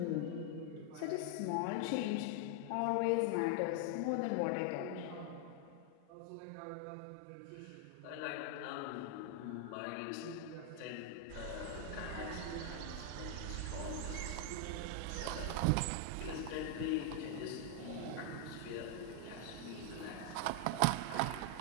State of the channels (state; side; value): different; both; correlation 0.00